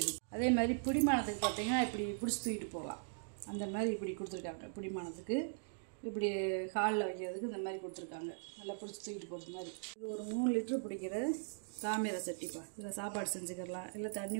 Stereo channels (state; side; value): silent; left; digital silence